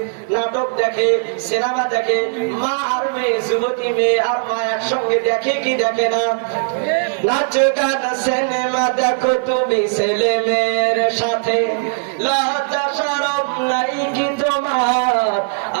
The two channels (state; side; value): silent; left; 56 dB below the other